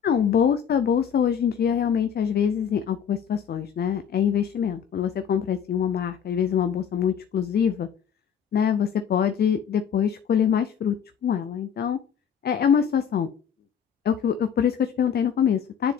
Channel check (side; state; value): right; quieter; 7.9 dB